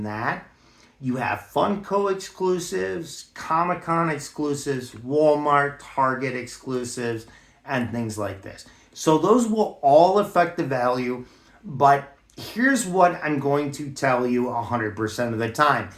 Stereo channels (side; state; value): both; identical; correlation 1.00